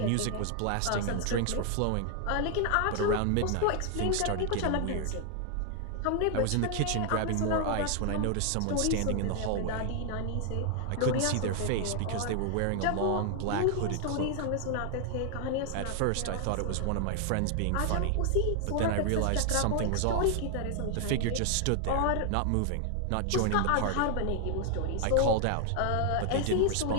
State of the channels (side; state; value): both; different; correlation 0.00